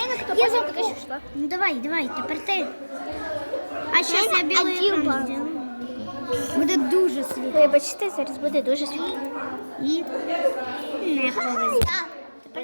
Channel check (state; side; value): inverted; both; correlation -1.00